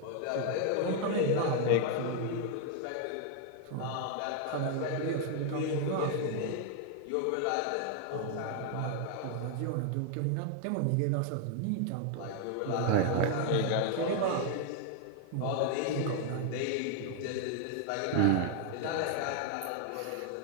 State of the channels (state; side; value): different; both; correlation 0.00